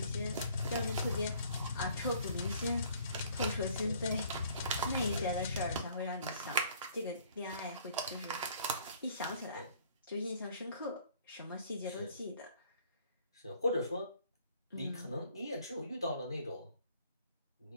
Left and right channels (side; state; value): both; inverted; correlation -0.58